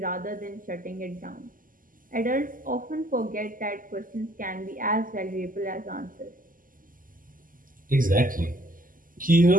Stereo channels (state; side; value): late; left; 0.40 ms